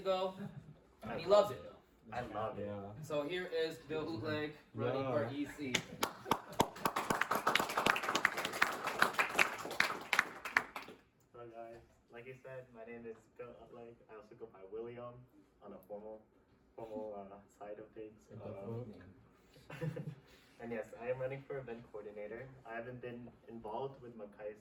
and he loves it. I love it. Yeah. So here is Bill Utleg running for EC. Hello guys, like you said, my name is Bill Utleg. I also go by William on a formal side of things. And yes, I am running for event coordinator. I haven't been involved with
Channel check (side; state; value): both; identical; correlation 1.00